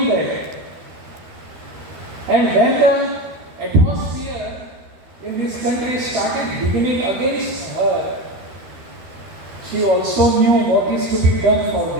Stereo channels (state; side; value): late; left; 13 ms